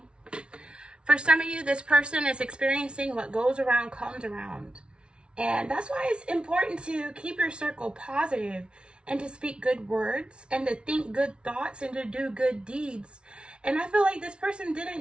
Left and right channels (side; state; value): left; late; 0.057 ms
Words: For some of you, this person is experiencing what goes around comes around. And that's why it's important to keep your circle positive and to speak good words and to think good thoughts and to do good deeds. And I feel like this person